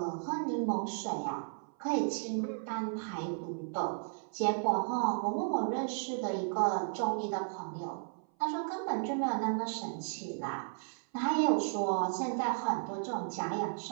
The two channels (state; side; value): silent; left; 55 dB below the other